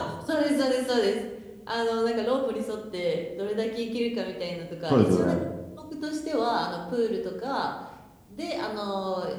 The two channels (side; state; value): both; identical; correlation 1.00